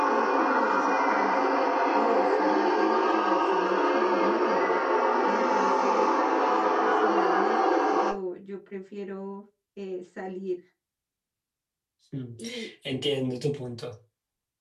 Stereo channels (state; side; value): identical; both; correlation 1.00